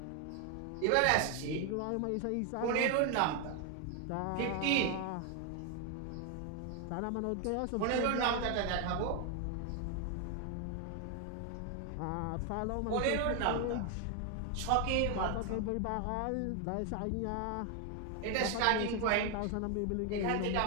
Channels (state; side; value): different; both; correlation 0.01